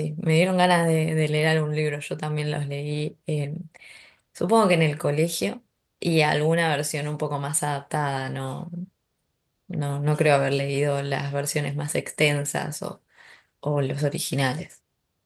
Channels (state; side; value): identical; both; correlation 1.00